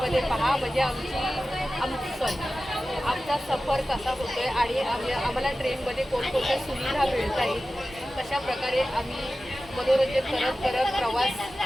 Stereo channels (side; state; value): both; normal; correlation 0.95